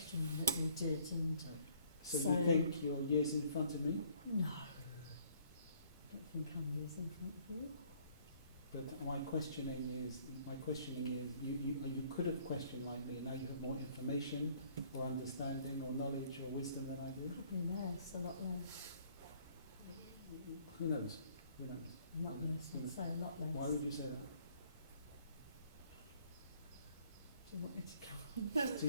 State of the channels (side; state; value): both; inverted; correlation -0.60